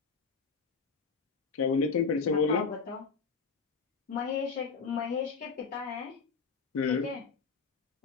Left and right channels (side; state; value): right; quieter; 5.2 dB